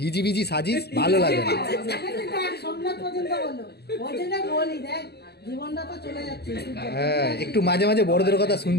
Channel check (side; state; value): right; late; 0.47 ms